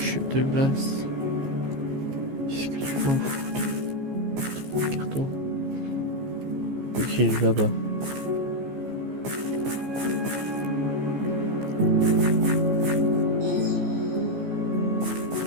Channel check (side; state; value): left; late; 15 ms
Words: de glace. Qu'est-ce que tu m'en fous? Carton. Ok, il est là-bas.